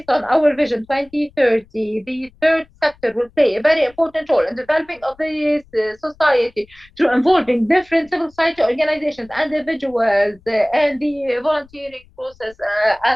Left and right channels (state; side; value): noise; left; rumble, 29 dB below the sound